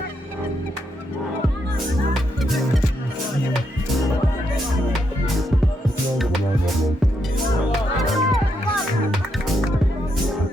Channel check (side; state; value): both; normal; correlation 0.79